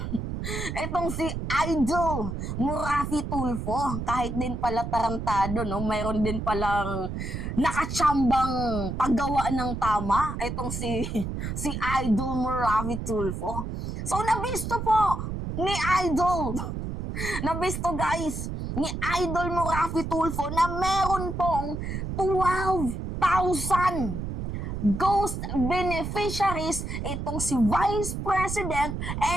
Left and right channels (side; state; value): right; noise; rumble, 5 dB below the sound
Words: Itong si Idol Murafi Tulfo, kahit din pala tarantado, no, mayroon din palang nakatsambang paggawa ng tama. Itong si Idol Murafi Tulfo. So, nabisto po ni Idol. Nabisto guys, ni Idol Murafi Tulfo na meron pong 12,000 ghost beneficiaries itong si Vice President